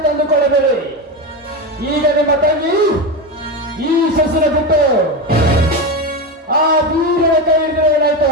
ತಂದುಕೊಳ್ಳಬೇಡಿ. ಈಗ ನಿಮ್ಮ ತಂಗಿ ಈ ಸಸಿನ ಬಿಟ್ಟು ಆ ವೀರನ ಕೈ ಹಿಡಿದ್ರೆ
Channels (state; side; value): normal; both; correlation 0.17